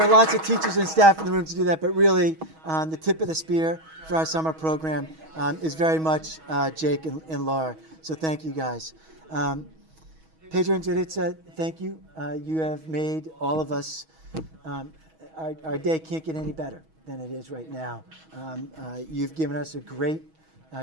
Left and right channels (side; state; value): left; late; 6.3 ms